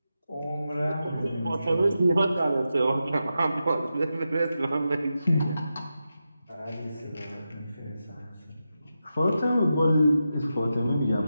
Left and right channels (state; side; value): inverted; both; correlation -0.89